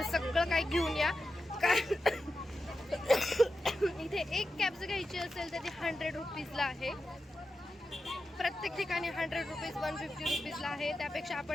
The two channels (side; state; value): both; normal; correlation 0.90